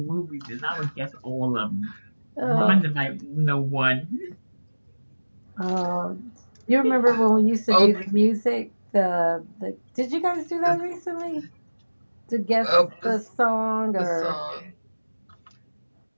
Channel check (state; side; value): inverted; both; correlation -1.00